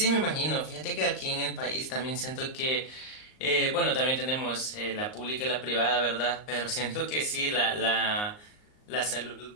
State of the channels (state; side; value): late; right; 38 ms